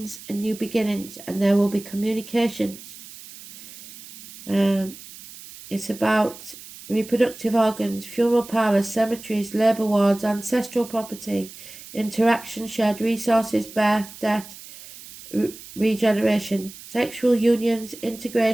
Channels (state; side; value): noise; right; hiss, 17 dB below the sound